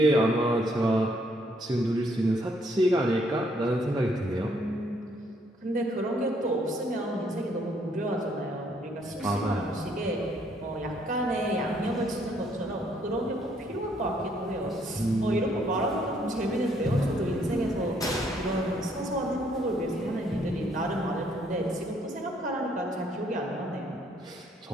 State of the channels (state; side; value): normal; both; correlation 0.68